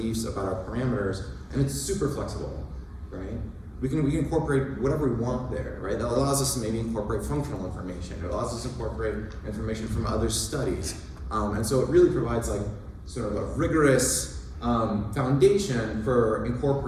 about our parameters, and it's super flexible, right? we can incorporate whatever we want there, right? That allows us to maybe incorporate functional information. It allows us to incorporate information from other studies. And so it really provides like sort of a rigorous foundation for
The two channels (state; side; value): identical; both; correlation 1.00